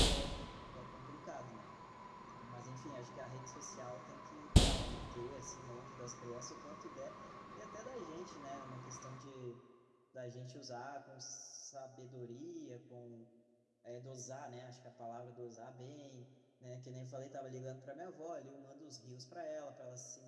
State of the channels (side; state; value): both; identical; correlation 1.00